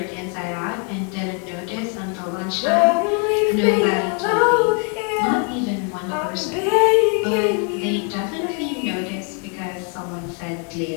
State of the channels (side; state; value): right; quieter; 37.2 dB